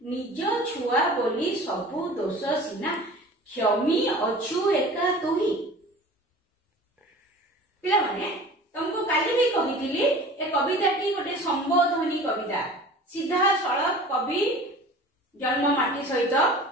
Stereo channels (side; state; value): both; normal; correlation 0.41